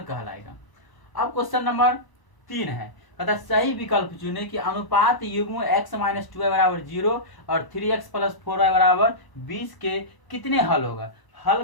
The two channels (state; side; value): late; right; 1.0 ms